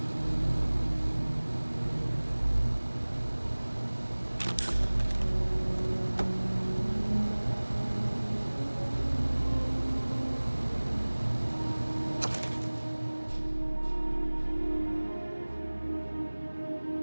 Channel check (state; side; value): inverted; both; correlation -1.00